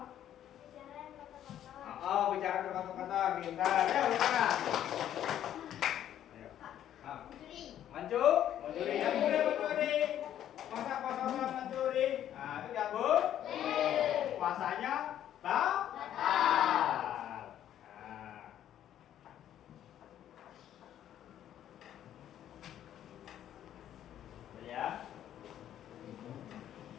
Ayo, sekarang. Ayo. Ah. Mencuri. Yang boleh mencuri. Masa puasa orang mencuri? Nah, itu ya Bu. Puasanya batal. Nah. Ya.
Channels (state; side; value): quieter; right; 11.0 dB